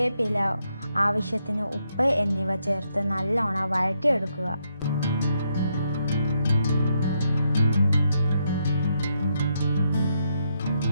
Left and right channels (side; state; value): both; inverted; correlation -0.78